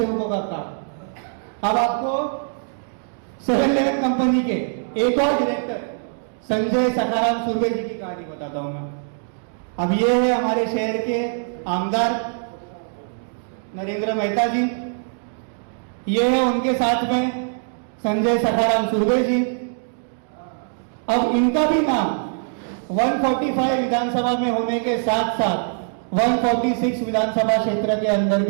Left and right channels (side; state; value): left; silent; 64 dB below the other